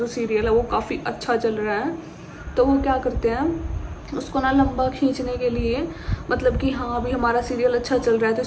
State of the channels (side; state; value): both; identical; correlation 1.00